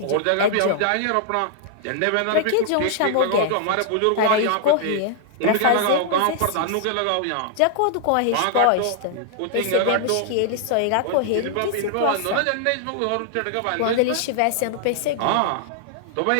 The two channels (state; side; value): different; both; correlation -0.01